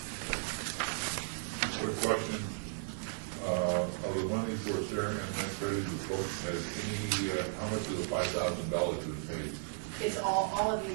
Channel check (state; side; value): silent; left; 54 dB below the other